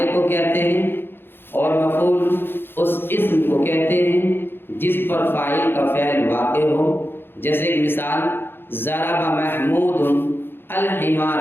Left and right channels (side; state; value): right; late; 0.10 ms